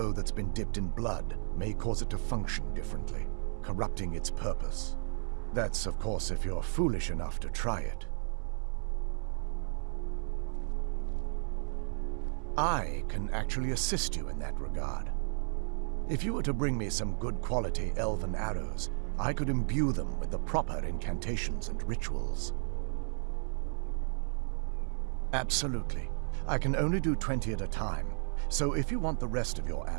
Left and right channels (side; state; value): left; silent; 55 dB below the other